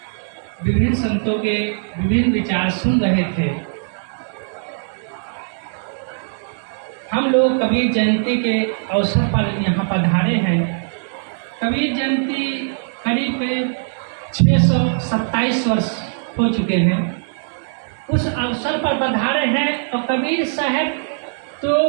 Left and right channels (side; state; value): left; silent; digital silence